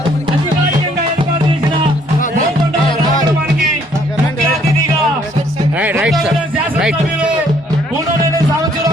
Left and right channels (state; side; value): normal; both; correlation 0.64